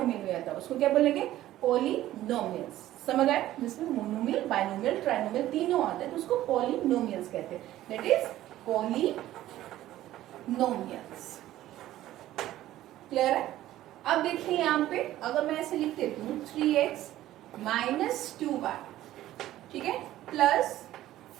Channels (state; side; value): quieter; left; 14.2 dB